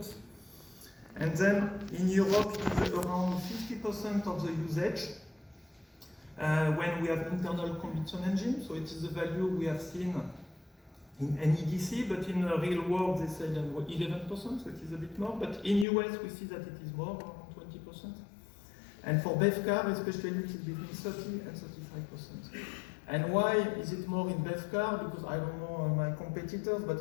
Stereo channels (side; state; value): right; drops out; at 15.9 s